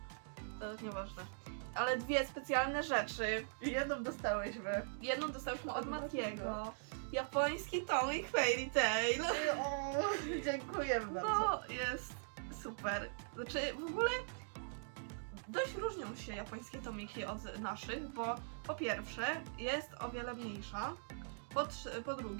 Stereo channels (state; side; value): silent; left; digital silence